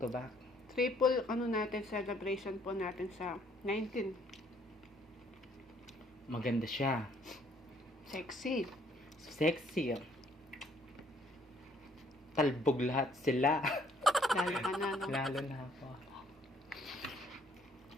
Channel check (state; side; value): normal; both; correlation 0.64